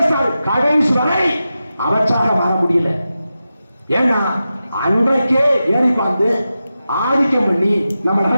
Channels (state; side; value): inverted; both; correlation -0.92